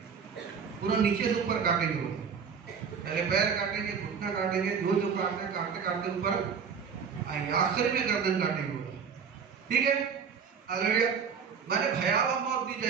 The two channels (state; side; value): quieter; left; 6.5 dB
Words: पूरा नीचे से ऊपर काटेंगे वो। पहले पैर काटेंगे, घुटना काटेंगे, जो काटते काटते काटते ऊपर आएंगे, आखिर में गर्दन काटेंगे वो। ठीक है, हालेलुया। मैंने भयावह मौत दी